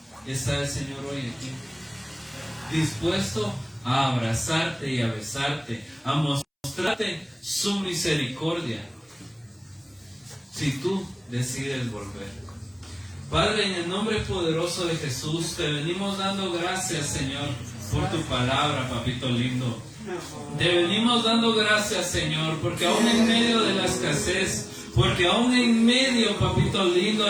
está el Señor hoy aquí, dispuesto a abrazarte y a besarte, a mostrarte su misericordia, si tú decides volver. Padre, en el nombre poderoso de Jesús, te venimos dando gracias, Señor, por tu palabra, papito lindo. Te venimos dando gracias, Señor, porque aún en medio de la escasez, porque aún en medio, papito lindo,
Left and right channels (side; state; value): both; identical; correlation 1.00